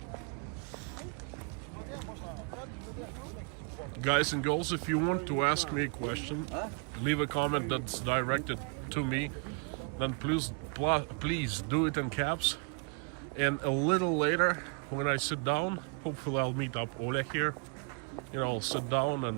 Guys and girls, if you want to ask me a question, leave a comment that's directed to me, then please do it in caps. And a little later, when I sit down, hopefully I'll meet up Olya here. You know, I'll sit down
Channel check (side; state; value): left; quieter; 37.0 dB